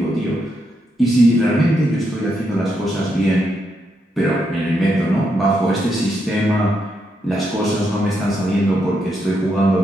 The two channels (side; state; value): both; normal; correlation 0.80